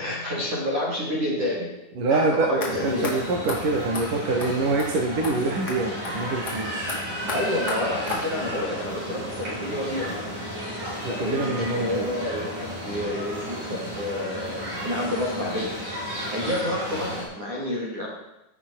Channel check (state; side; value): late; left; 10 ms